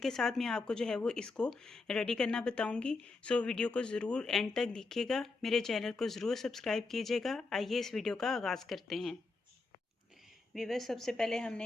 साथ मैं आपको जो है वो इसको रेडी करना बताऊंगी। सो वीडियो को ज़रूर एंड तक देखिएगा। मेरे चैनल को ज़रूर सब्सक्राइब कीजिएगा। आइए इस वीडियो का आगाज़ करते हैं। व्यूवर्स, सबसे पहले हमने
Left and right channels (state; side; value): quieter; right; 3.7 dB